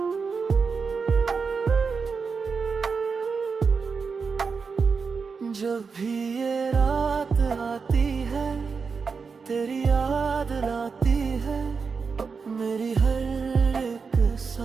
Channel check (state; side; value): quieter; left; 5.2 dB